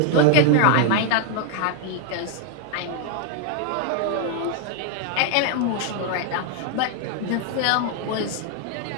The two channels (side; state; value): both; different; correlation 0.00